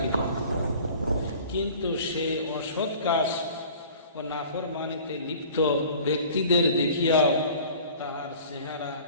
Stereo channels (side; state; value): both; inverted; correlation -0.46